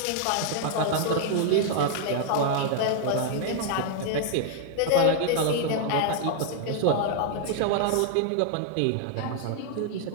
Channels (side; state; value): both; different; correlation 0.00